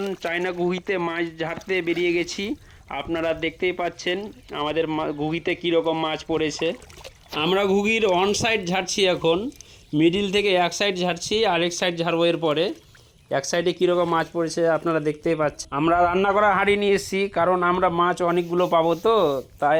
চায়না ঘুগিতে মাছ ঝাড়তে বেরিয়ে গেছি। আপনারা দেখতেই পাচ্ছেন আমাদের ঘুগিতে কীরকম মাছ পড়েছে। আমরা ঘুগির অন সাইড ঝাড়ছি, এখন মিডিল থেকে এক সাইড ঝাড়ছি, আরেক সাইড ঝাড়বো এর পরে। এক সাইডে কীরকম মাছ পড়েছে আপনারা দেখতেই পাচ্ছেন। আমরা রান্না করা হাঁড়ি নিয়ে এসেছি, কারণ আমরা মাছ অনেকগুলো পাবো, তো তাই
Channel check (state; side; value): identical; both; correlation 1.00